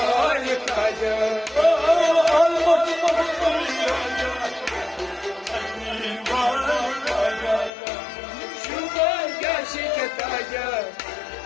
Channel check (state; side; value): drops out; right; at 7.7 s